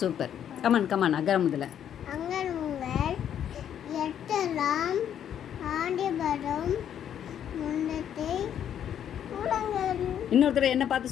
கமான் கமான் அகரம் முதல்ல. அங்கலும் உங்கள் எட்டலாம் ஆண்டிபடும் முன்னத்தை உலங்கள். இன்னொரு தடவை என்ன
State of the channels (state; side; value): quieter; right; 9.6 dB